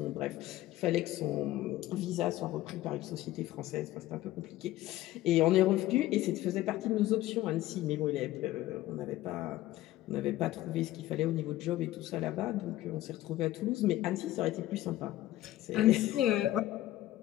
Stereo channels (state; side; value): quieter; right; 15.4 dB